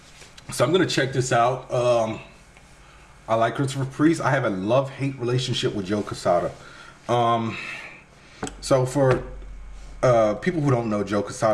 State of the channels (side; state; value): both; identical; correlation 1.00